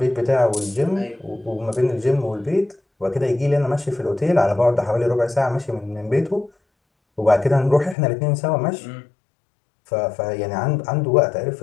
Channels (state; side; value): drops out; right; at 8.0 s